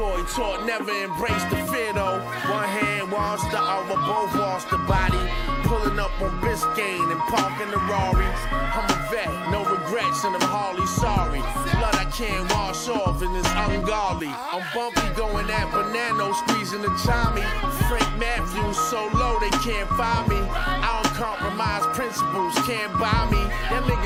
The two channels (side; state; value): both; identical; correlation 1.00